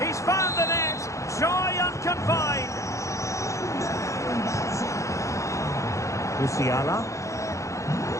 found the net! Joy unconfined! Musiala.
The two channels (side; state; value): right; late; 0.15 ms